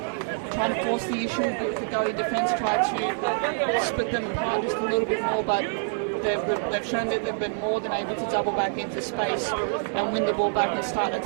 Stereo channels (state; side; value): silent; left; digital silence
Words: trying to force the issue a bit with the Gully defence, try to split them apart just a little bit more, but they've shown that they've been more than able to double back into space and win the ball back and start